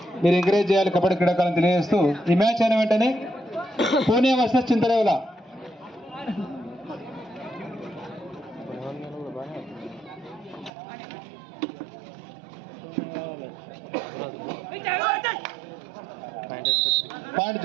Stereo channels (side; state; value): left; drops out; at 10.7 s